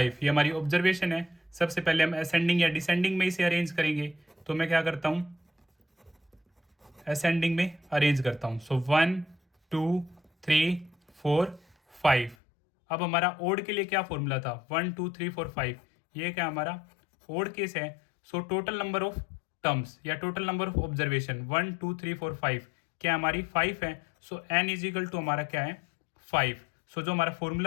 ये हमारी ऑब्जर्वेशन है। सबसे पहले हम असेंडिंग या डिसेंडिंग में इसे अरेंज करेंगे, तो मैं क्या करता हूँ असेंडिंग में अरेंज करता हूँ। सो 1, 2, 3, 4, 5। अब हमारा ओड के लिए क्या फॉर्मूला था 1, 2, 3, 4, 5। ये क्या हमारा ओड केस है। So total number of terms या टोटल नंबर ऑफ ऑब्जर्वेशन 1, 2, 3, 4, 5 क्या हमारी 5 है। सो n इज इक्वल टू हमारा क्या है 5। सो जो हमारा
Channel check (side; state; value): right; drops out; at 12.4 s